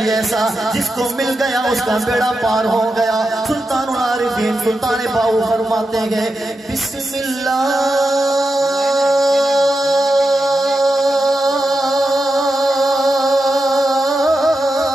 ایسا جس کو مل گیا اس کا بیڑا پار ہو گیا سلطان العارفین سلطان باؤ فرماتے گئے بسم اللہ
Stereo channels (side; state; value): both; normal; correlation 0.88